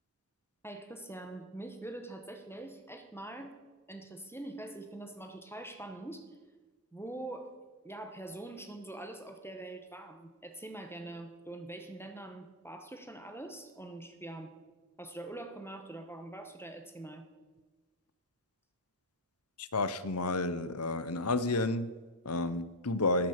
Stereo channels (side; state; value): both; normal; correlation -0.02